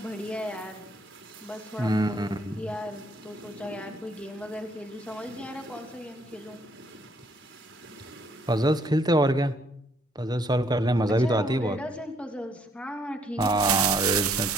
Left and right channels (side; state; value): both; normal; correlation 0.66